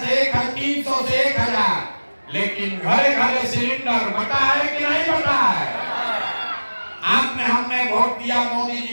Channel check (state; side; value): inverted; both; correlation -1.00